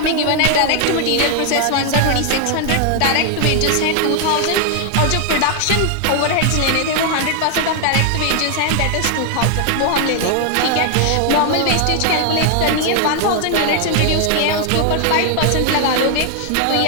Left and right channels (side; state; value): both; different; correlation 0.00